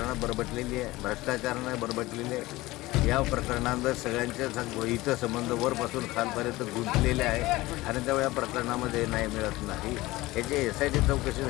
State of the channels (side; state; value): right; quieter; 19.2 dB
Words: बरबटलेली आहे, भ्रष्टाचाराने बरबटलेली आहे। या प्रकरणांवर सगळ्यांचे हितसंबंध वरपासून खालपर्यंत गुंतलेले आहे आणि त्या प्रकरणामध्ये न्याय मिळत नाही। याची SIT चौकशी